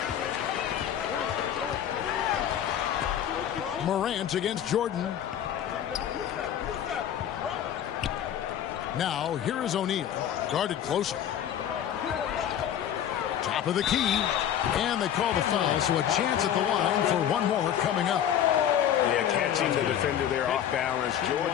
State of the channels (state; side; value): quieter; right; 10.0 dB